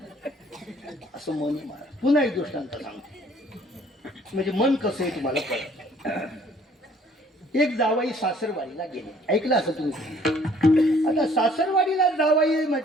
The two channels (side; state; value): both; normal; correlation 0.58